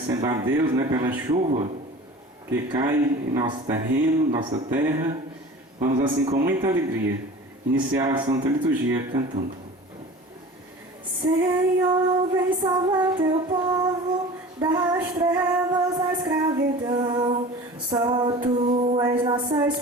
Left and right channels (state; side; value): normal; both; correlation 0.39